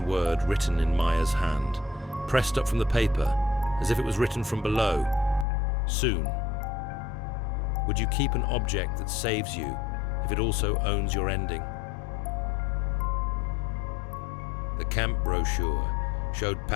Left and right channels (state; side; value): drops out; right; at 5.5 s